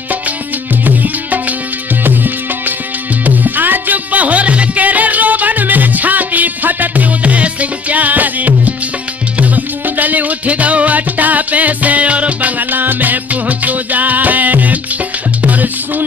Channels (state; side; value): quieter; right; 4.7 dB